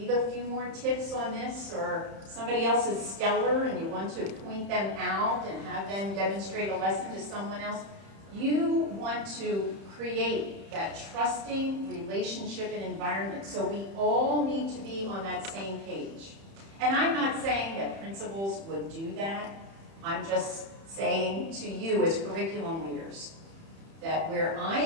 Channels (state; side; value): late; left; 31 ms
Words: a few more tips on this, or somebody else is stellar and you want to point them out and have them demonstrate a lesson to someone else. You want to create that trusting relationship and environment. So we all need to be on that same page. And I'm not saying that principals would do that. I'm just saying to you as curriculum leaders that where I